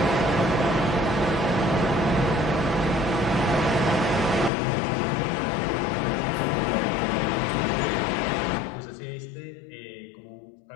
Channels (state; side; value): drops out; right; at 4.5 s